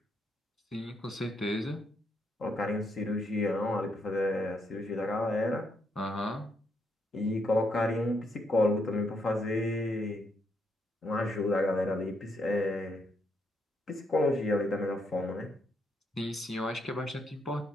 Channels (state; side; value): normal; both; correlation 0.77